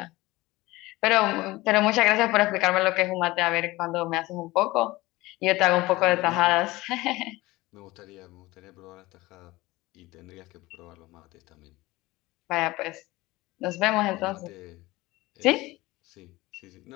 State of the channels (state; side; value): quieter; right; 19.8 dB